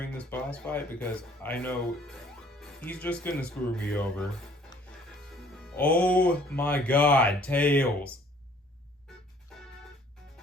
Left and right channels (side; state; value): both; normal; correlation 0.57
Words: this boss fight because I know he's just gonna screw me over. Oh my god, Tails!